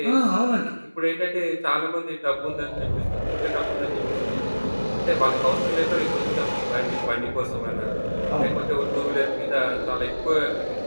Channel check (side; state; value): both; inverted; correlation -1.00